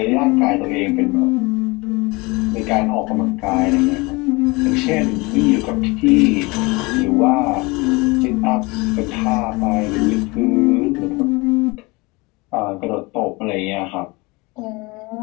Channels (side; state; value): right; quieter; 25.1 dB